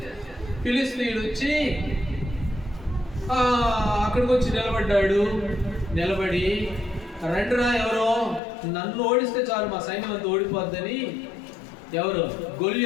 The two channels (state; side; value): drops out; right; at 8.4 s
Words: ఫిలిస్తీన్లు వచ్చి అక్కడికి వచ్చి నిలబడి రండిరా, ఎవరో నన్ను ఓడిస్తే చాలు, మా సైన్యం అంతా ఓడిపోద్దని ఎవరు?